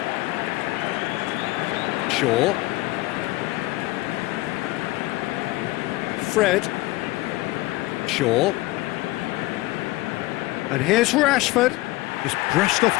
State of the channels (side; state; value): right; quieter; 19.7 dB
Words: Shaw. Fred. Shaw. And here's Rashford. Just brushed off